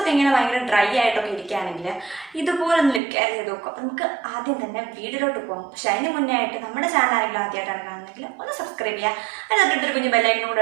ഇങ്ങനെ ഭയങ്കര ഡ്രൈ ആയിട്ടൊക്കെ ഇരിക്കുകയാണെങ്കിൽ ഇതുപോലെ ഒന്ന് ലിപ് കെയർ ചെയ്ത് നോക്കും. അപ്പം നമുക്ക് ആദ്യം തന്നെ വീഡിയോയിലോട്ട് പോകാം. പക്ഷേ അതിന് മുന്നേ ആയിട്ട് നമ്മുടെ ചാനൽ ആരെങ്കിലും ആദ്യമായിട്ടാണ് കാണുന്നതെങ്കിൽ ഒന്ന് സബ്സ്ക്രൈബ് ചെയ്യുക. അതിനകത്തൊരു കുഞ്ഞ് ബെല്ലൈക്കനും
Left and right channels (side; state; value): left; drops out; at 3.0 s